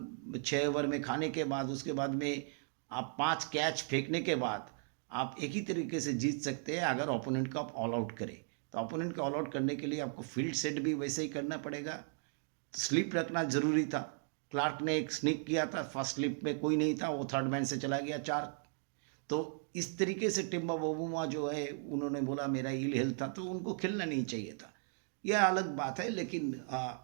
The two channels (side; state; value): left; silent; 53 dB below the other